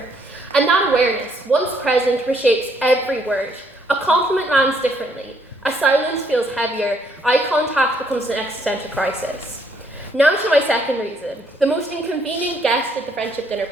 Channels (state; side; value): normal; both; correlation 0.69